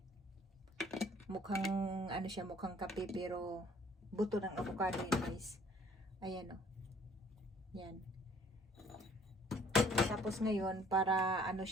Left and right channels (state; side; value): normal; both; correlation 0.57